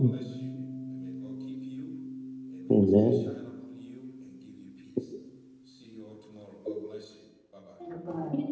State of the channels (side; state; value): both; identical; correlation 1.00